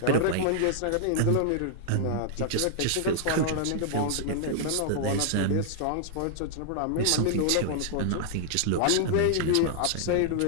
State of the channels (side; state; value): both; different; correlation -0.01